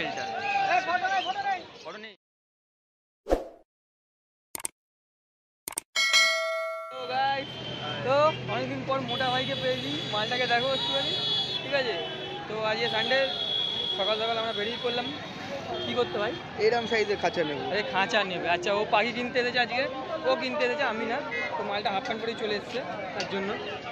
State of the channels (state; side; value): identical; both; correlation 1.00